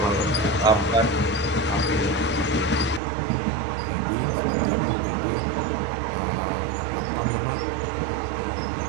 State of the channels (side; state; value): left; drops out; at 3.0 s